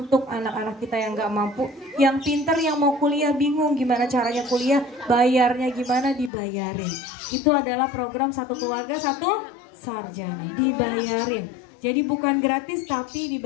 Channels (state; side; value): drops out; right; at 6.3 s